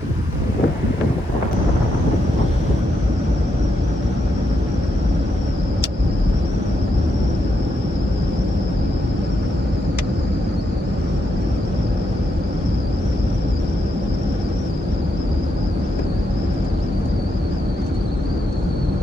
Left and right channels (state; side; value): normal; both; correlation 0.81